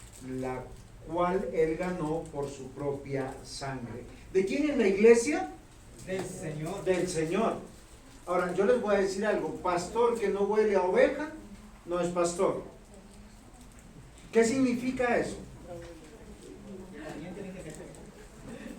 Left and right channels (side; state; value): both; identical; correlation 1.00